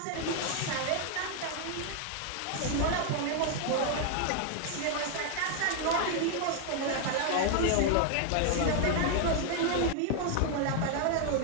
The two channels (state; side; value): different; both; correlation 0.00